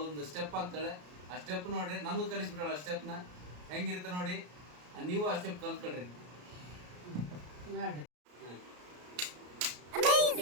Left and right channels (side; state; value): left; late; 33 ms